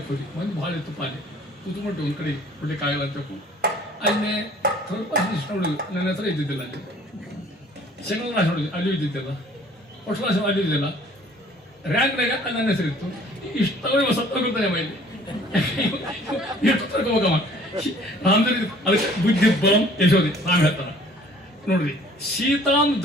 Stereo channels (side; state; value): both; normal; correlation 0.54